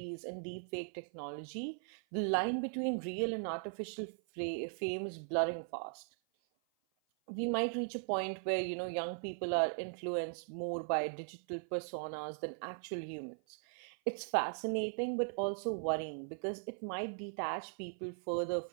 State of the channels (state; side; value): silent; left; 52 dB below the other